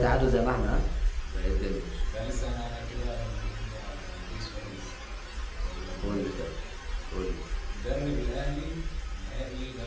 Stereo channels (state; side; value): identical; both; correlation 1.00